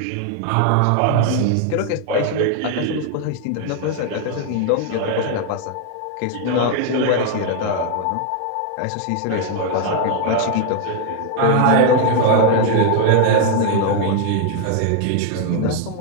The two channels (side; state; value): both; different; correlation 0.00